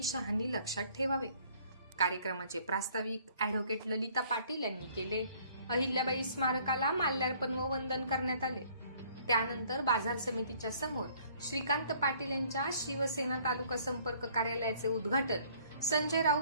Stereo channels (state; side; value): inverted; both; correlation -0.59